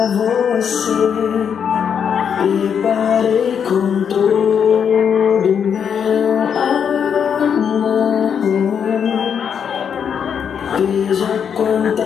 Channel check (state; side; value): quieter; right; 7.5 dB